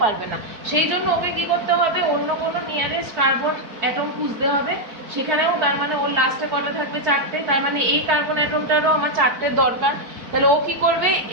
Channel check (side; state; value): left; late; 4.5 ms